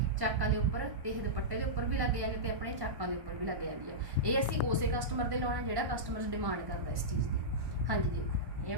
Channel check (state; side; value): late; left; 1.1 ms